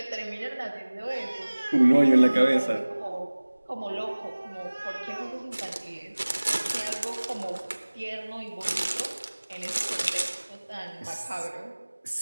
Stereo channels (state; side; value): inverted; both; correlation -1.00